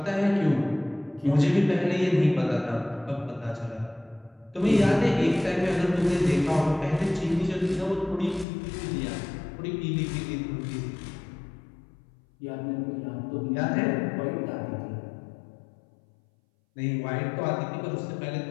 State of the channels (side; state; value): right; drops out; at 8.5 s